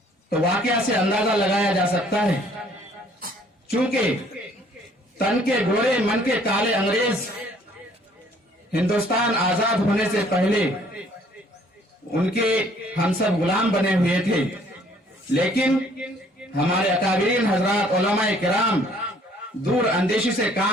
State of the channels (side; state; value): both; normal; correlation 0.59